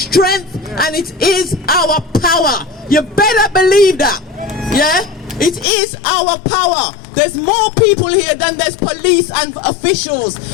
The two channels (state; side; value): drops out; right; at 5.7 s